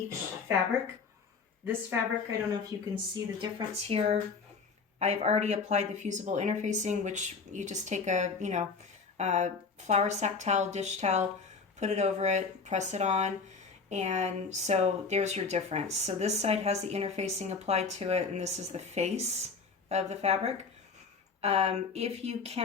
fabric. This fabric, I don't know if you can see the difference here. I've already applied the fusible interfacing, which you just take a flour sack towel, dish towel, put it over it, press it on, and so there's your difference. So this side has the interfacing applied to it, and this is the face of the fabric. If you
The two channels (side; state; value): right; quieter; 4.9 dB